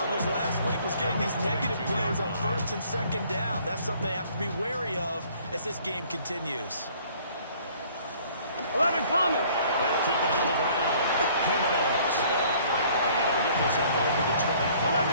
last week was getting these negative plays on 1st and 2nd down. That's something they have to be wary of as this game continues. 11 Thomas. They'll keep it on the ground. Jimenez. And they'll get this up over the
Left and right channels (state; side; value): inverted; both; correlation -0.57